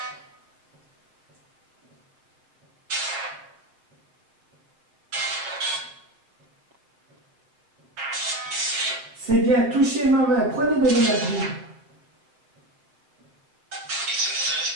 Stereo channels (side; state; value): left; late; 7.1 ms